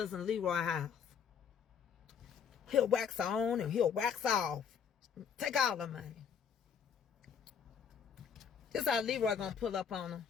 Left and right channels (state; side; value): quieter; right; 7.3 dB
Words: Leroy's house. He'll wax on and he'll wax off. Take all the money. This how Leroy gonna pull up on her.